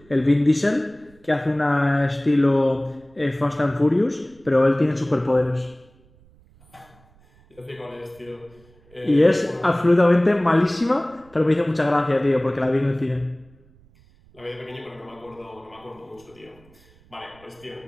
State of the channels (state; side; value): noise; right; rumble, 29 dB below the sound